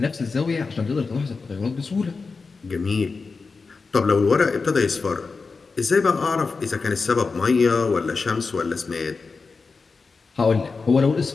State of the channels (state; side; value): quieter; right; 4.5 dB